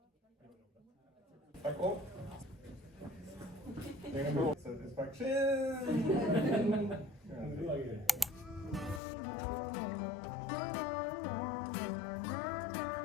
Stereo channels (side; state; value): right; drops out; at 9.0 s